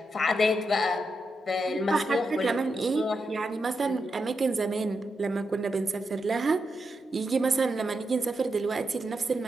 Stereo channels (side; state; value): both; normal; correlation 0.85